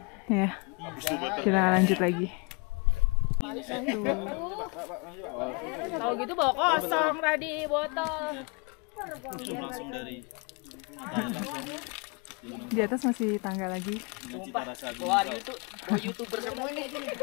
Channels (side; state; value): right; quieter; 31.2 dB